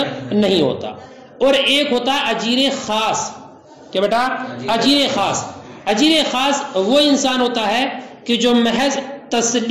نہیں ہوتا. اور ایک ہوتا اجیر خاص. کیا بیٹا؟ اجیر خاص. اجیر خاص وہ انسان ہوتا ہے کہ جو محض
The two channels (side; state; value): both; identical; correlation 1.00